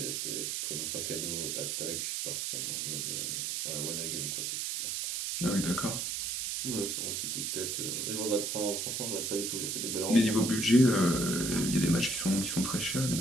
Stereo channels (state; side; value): noise; right; hiss, 1 dB below the sound